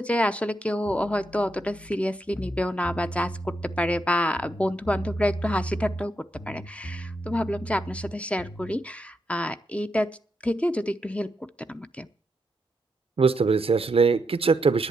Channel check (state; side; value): normal; both; correlation 0.82